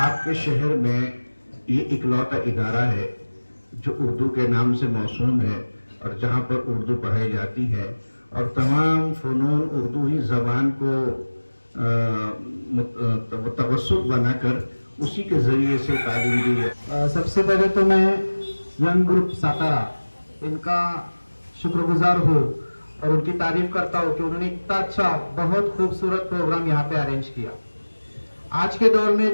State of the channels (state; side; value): inverted; both; correlation -1.00